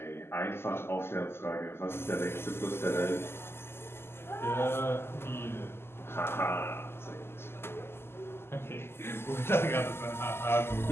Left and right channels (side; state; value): right; late; 0.12 ms